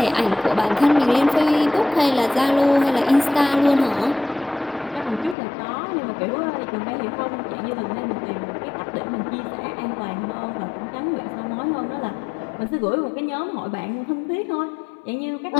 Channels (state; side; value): drops out; right; at 5.4 s